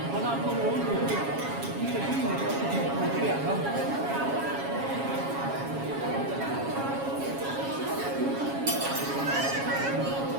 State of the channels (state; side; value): late; left; 7.3 ms